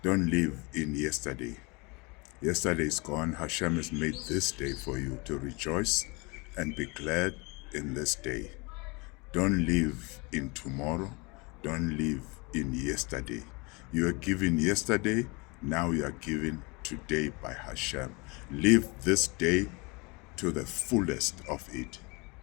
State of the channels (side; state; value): right; quieter; 27.7 dB